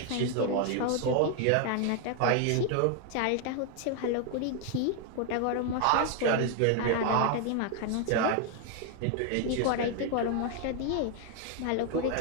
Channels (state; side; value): different; both; correlation 0.00